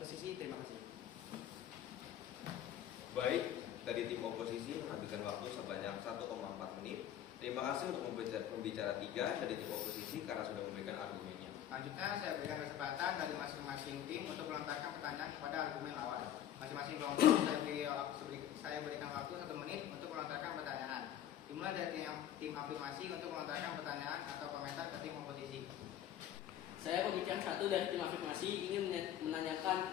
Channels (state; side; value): quieter; right; 10.9 dB